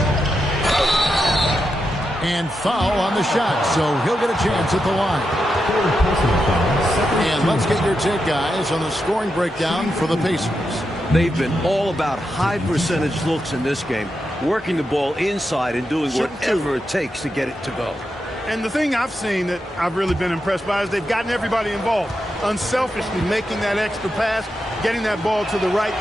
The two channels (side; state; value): both; normal; correlation 0.86